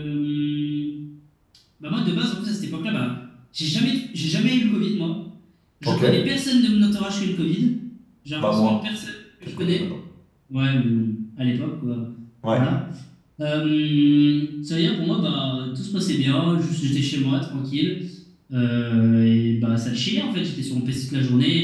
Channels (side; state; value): both; identical; correlation 1.00